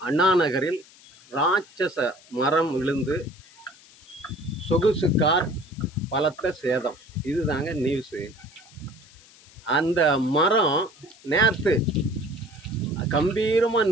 அண்ணா நகரில் ராட்சச மரம் விழுந்து சொகுசு கார் பலத்த சேதம். இதுதாங்க நியூஸு. அந்த மரம் நேற்று கம்பீரமாக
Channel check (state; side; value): noise; left; hiss, 25 dB below the sound